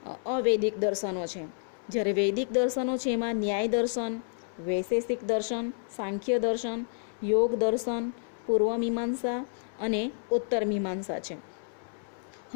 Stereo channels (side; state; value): right; silent; digital silence